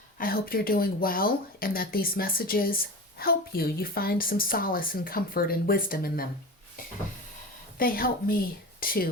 I hope you're doing well and that these messages help you. You find some solace and comfort and wisdom in them. They help me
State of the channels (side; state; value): both; normal; correlation 0.30